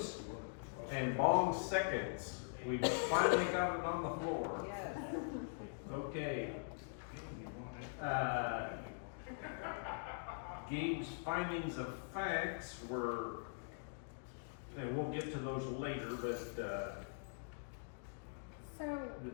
and Bong seconds. We've finally got it on the floor. Yes. Okay. Gabe's findings of facts were, and we'll get to those later, but, So,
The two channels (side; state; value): right; silent; digital silence